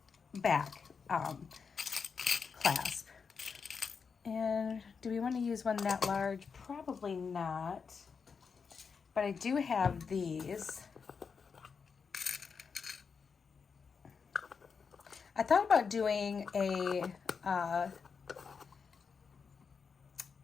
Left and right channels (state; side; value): quieter; right; 5.7 dB